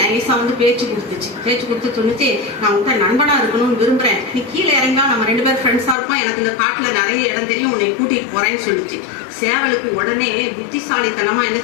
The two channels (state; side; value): drops out; right; at 6.0 s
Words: நைஸா வந்து பேச்சு கொடுத்து சொன்னிச்சு, நான் உங்க நண்பனா இருக்கணும்னு விரும்புறேன், நீ கீழே இறங்கா நம்ம 2 பேரும் ஃப்ரெண்ட்ஸா இருப்போம், எனக்கு இந்த காட்டுல நிறைய இடம் தெரியும், உன்னை கூட்டிட்டு போறேன்னு சொல்லிச்சு. சேவலுக்கு உடனே புத்திசாலித்தனமா என்ன